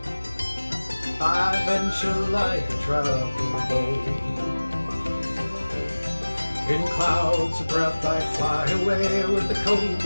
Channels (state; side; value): inverted; both; correlation -1.00